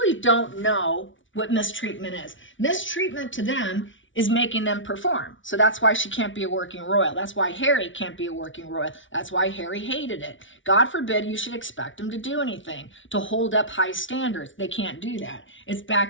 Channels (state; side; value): late; right; 0.56 ms